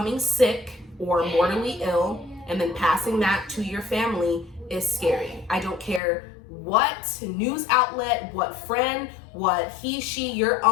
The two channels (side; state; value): right; drops out; at 6.0 s